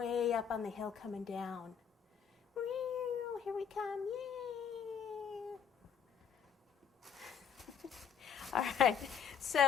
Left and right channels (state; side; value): quieter; right; 7.6 dB